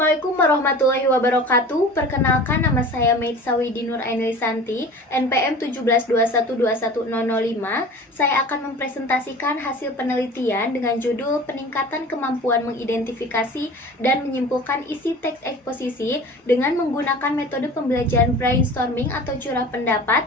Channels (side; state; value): both; normal; correlation 0.40